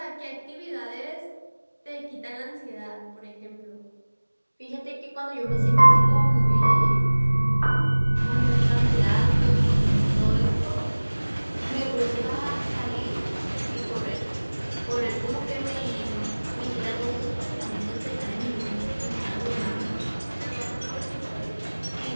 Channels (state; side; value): inverted; both; correlation -1.00